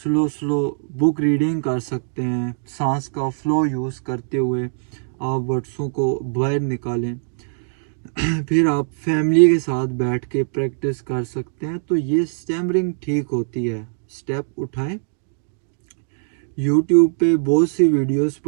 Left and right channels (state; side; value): silent; left; digital silence